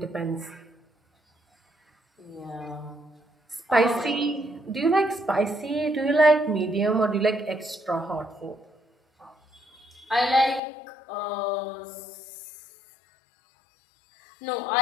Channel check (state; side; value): drops out; right; at 10.6 s